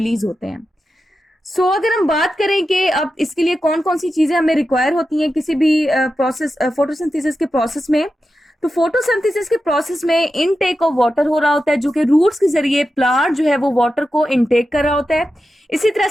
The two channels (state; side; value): normal; both; correlation 0.90